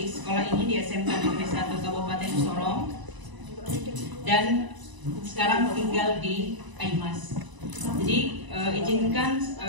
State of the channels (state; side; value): late; left; 1.0 ms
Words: sekolah ini di SMK Negeri 1 Kabupaten Sorong dan sekarang tinggal di Aimas. Jadi izinkan